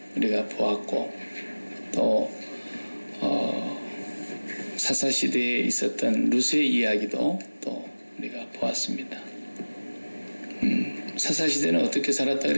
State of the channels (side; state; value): both; inverted; correlation -1.00